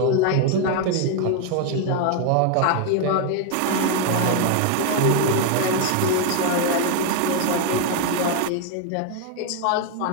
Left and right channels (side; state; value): both; different; correlation 0.01